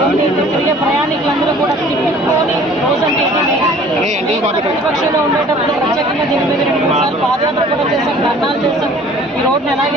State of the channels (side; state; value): both; normal; correlation 0.51